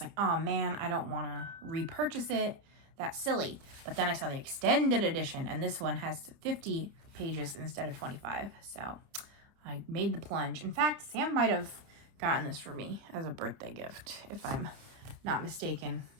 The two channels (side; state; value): left; late; 29 ms